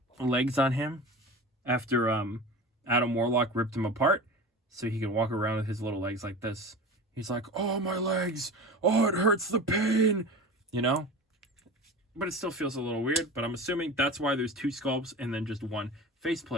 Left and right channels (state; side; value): normal; both; correlation 0.33